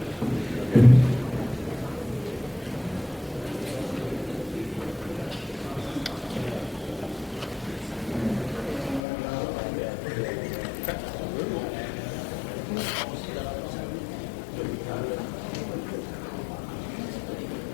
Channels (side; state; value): right; drops out; at 9.0 s